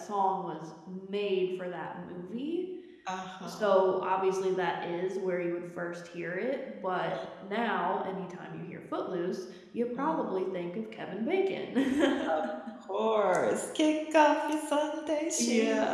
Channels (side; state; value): both; identical; correlation 1.00